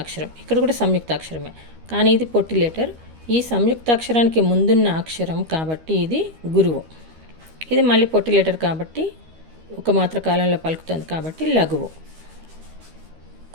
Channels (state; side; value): late; left; 13 ms